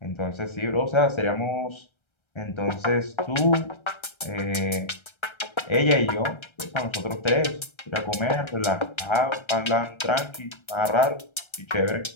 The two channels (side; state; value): right; late; 1.3 ms